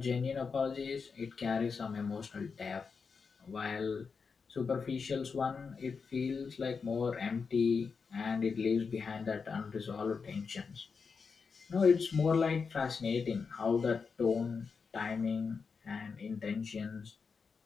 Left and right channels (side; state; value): right; quieter; 5.3 dB